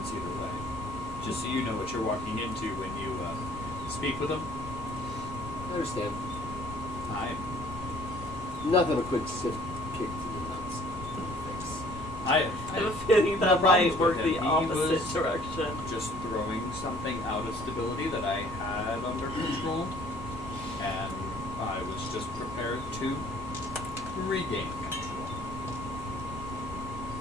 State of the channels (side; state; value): both; normal; correlation 0.56